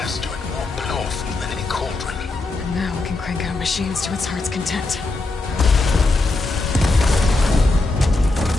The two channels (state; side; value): quieter; right; 3.2 dB